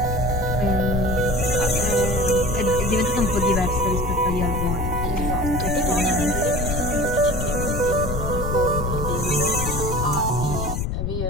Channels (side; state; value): left; noise; rumble, 2 dB below the sound